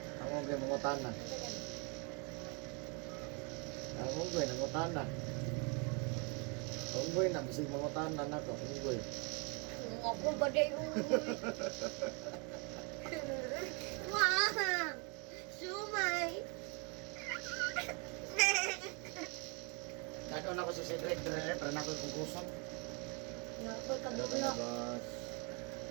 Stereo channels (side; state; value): left; quieter; 33.3 dB